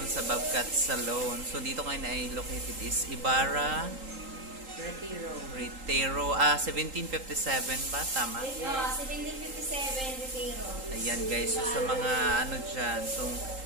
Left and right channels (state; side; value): late; left; 3.8 ms